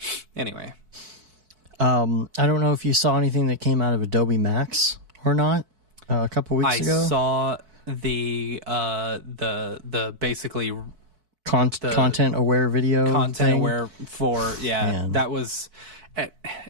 Anyway. I don't know if you saw anything that came out of Adobe MAX or not a couple weeks ago. I saw the basically content aware video content thing. aware for Man. That was, and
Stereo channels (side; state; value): left; late; 4.6 ms